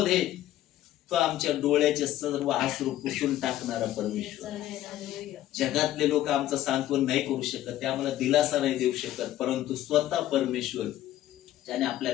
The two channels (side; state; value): right; quieter; 13.5 dB